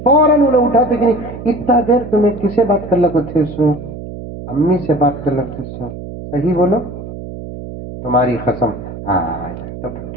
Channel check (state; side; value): noise; right; hum, 11 dB below the sound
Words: فوراً انہیں اٹھاتے کہ نہیں اتنا دیر تمہیں کسے بات کر لگو تھے سو امی سے بات کر لگتے سو صحیح بولو تمہاری قسم. ہاں تو